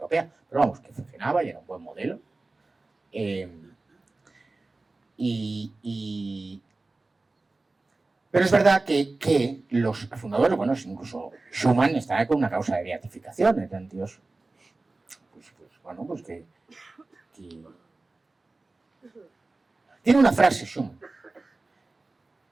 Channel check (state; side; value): quieter; left; 3.3 dB